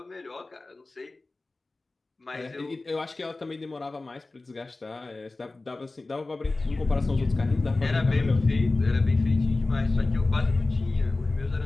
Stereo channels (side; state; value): right; quieter; 3.2 dB